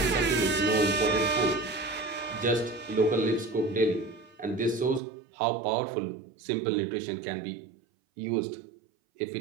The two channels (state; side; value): drops out; left; at 5.0 s